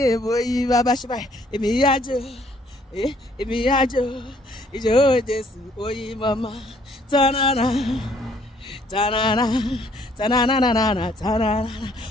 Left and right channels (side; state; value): both; normal; correlation 0.63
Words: bó yí bàbá ṣe báyìí, èmi á jó, ìjó Jésù oyin mama, tanana,